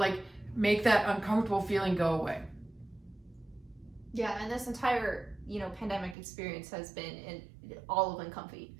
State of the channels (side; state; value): left; drops out; at 6.2 s